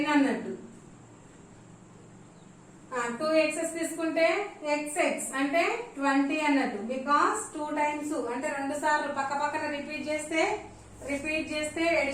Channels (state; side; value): identical; both; correlation 1.00